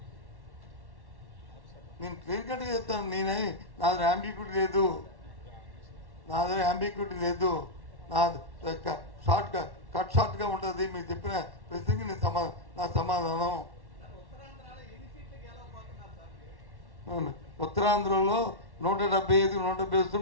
నేను క్లియర్ కట్గా చెప్తాను. నా దగ్గర అంబిగ్యూటీ లేదు. నాది షార్ట్గా ఉంటుంది. మీరు చెప్పిన ప్రశ్నకి నా సమాధానం. ఉత్తరాంధ్రలో 175 వస్తే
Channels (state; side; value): late; left; 1.1 ms